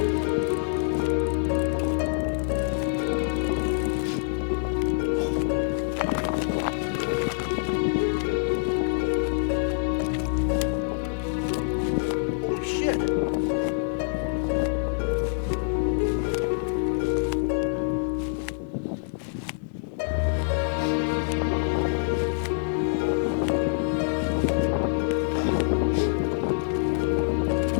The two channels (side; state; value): right; silent; digital silence